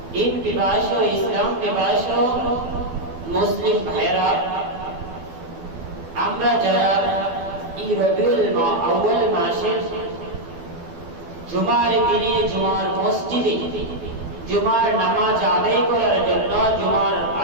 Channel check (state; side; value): late; left; 12 ms